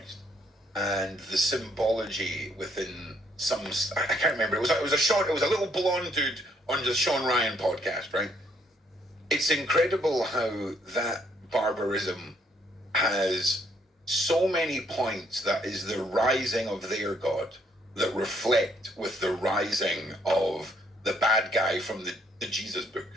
and the symbology within some, I can't remember. It was a little blonde dude on the Sean Ryan podcast, right? It's incredible how that barbarism has so many points that is the rising of their God that reflect with the rising of the bad guy from the Jesus book.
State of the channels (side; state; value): both; normal; correlation 0.69